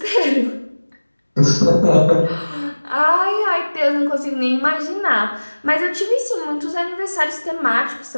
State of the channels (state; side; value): inverted; both; correlation -1.00